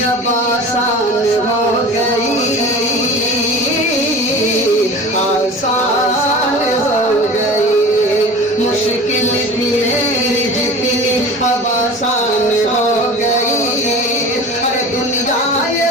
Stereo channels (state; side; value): normal; both; correlation 0.37